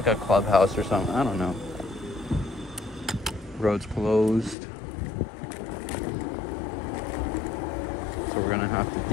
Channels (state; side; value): drops out; right; at 4.5 s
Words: a clubhouse or something. I don't know. Road's closed. So we're gonna have to